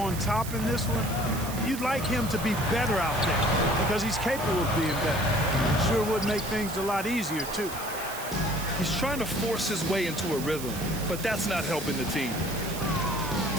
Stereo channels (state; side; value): noise; right; hiss, 10 dB below the sound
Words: top in this one, you'd like him to be better out there because he's capable of being better. Sure would make things a lot easier, too. He's trying to force his way into a rhythm, but that's not helping the team.